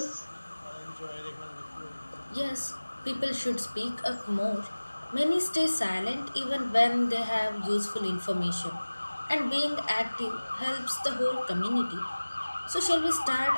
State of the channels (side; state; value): both; inverted; correlation -1.00